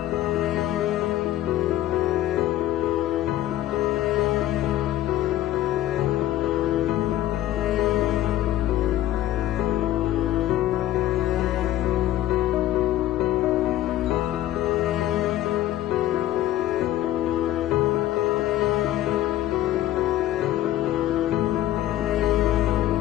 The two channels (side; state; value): right; quieter; 13.8 dB